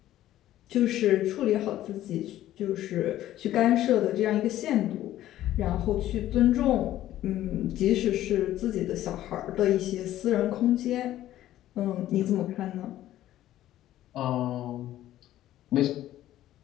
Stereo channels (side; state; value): right; quieter; 13.5 dB